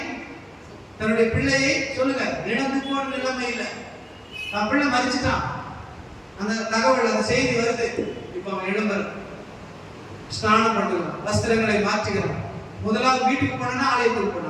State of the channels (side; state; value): both; identical; correlation 1.00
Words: தன்னுடைய பிள்ளையை சொல்லுங்க, இழந்து போன நிலைமை இல்லை, தன் பிள்ளை மரிச்சிட்டான். அந்த தகவல், அந்த செய்தி வருது. இப்ப அவன் எழும்புறான், ஸ்நானம் பண்ணுகிறான், வஸ்திரங்களை மாற்றுகிறான். முதலாவது வீட்டுக்கு போனா ஆலயத்துக்கு